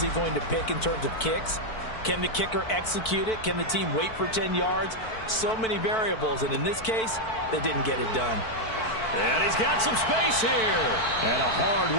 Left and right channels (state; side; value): late; right; 4.5 ms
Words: he going to pick in terms of kicks? Can the kicker execute it? Can the team wait for 10 yards? So many variables, and in this case, they didn't get it done. And he's got some space here. And a